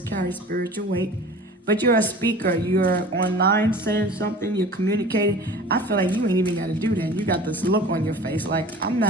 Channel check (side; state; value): both; normal; correlation 0.41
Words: spiritual weight. But you're a speaker. You're online saying something. You're communicating. I feel like you ain't even got to do that. You got this look on your face like, I'm